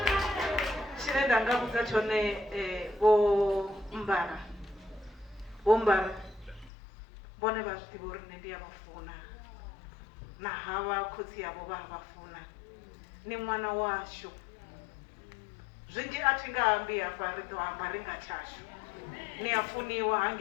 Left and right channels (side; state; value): right; drops out; at 6.7 s